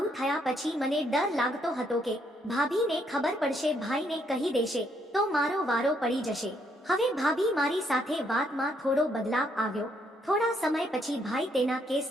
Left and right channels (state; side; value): normal; both; correlation 0.72